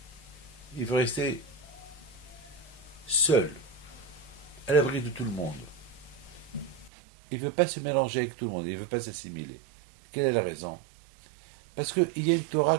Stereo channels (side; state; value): left; drops out; at 6.9 s